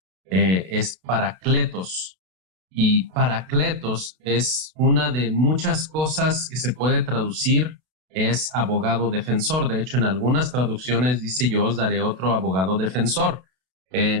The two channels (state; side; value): late; left; 32 ms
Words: es parakletos, y parakletos es una de muchas cosas que se puede traducir. Es abogado defensor. De hecho, en algunas traducciones dice: yo os daré otro abogado defensor.